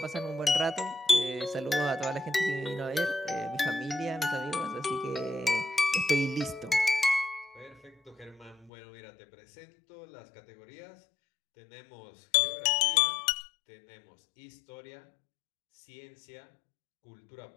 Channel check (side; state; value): right; drops out; at 8.7 s